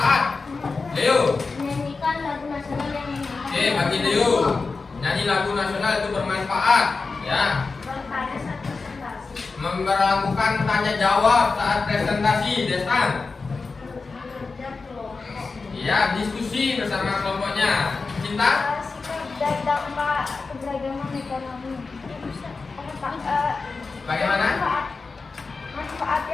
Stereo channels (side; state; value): right; quieter; 4.2 dB